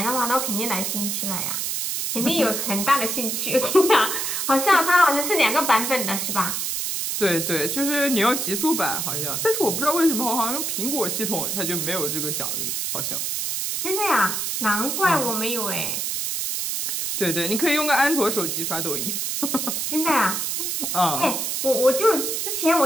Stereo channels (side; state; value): right; noise; hiss, 1 dB below the sound